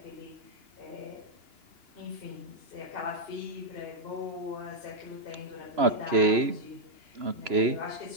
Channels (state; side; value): late; left; 3.0 ms